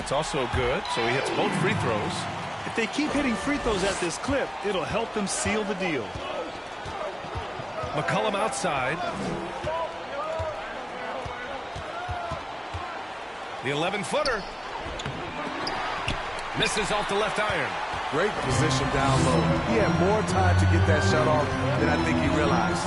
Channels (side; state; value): both; identical; correlation 1.00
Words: also good, so he hits both free throws. If they keep hitting free throws at this clip, it'll help them seal the deal. McCollum outside. The 11-footer. Misses off the left iron. Great position down low. He had more time to get that shot off than I think he realized.